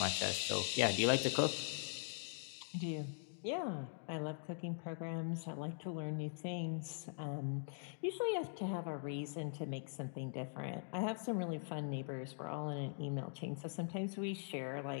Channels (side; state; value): right; silent; digital silence